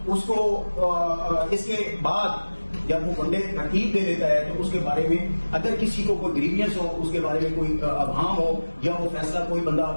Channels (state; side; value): inverted; both; correlation -1.00